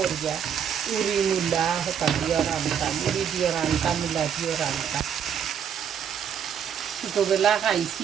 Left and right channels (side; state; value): left; quieter; 8.2 dB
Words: উড়ি মূলা হতা দিয়ে রান্তাম উড়ি দিয়ে রান্তাম মূলা দিয়ে রান্তাম ছোটোবেলা